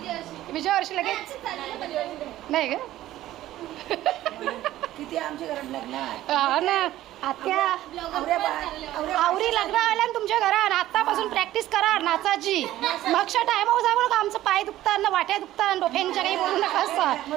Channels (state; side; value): quieter; left; 14.4 dB